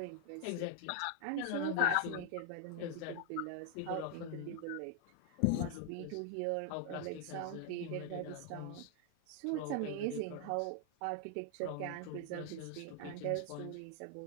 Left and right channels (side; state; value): both; different; correlation 0.00